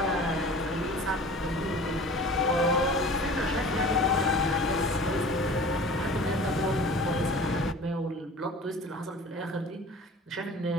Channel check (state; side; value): normal; both; correlation 0.42